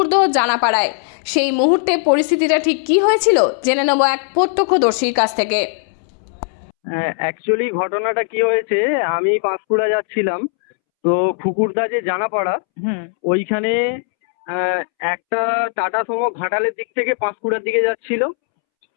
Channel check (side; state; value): right; silent; 67 dB below the other